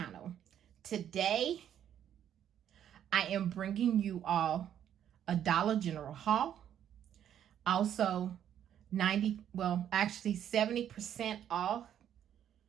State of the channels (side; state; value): left; quieter; 10.0 dB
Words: Today, I am bringing you all a Dollar General haul. Also, 70% off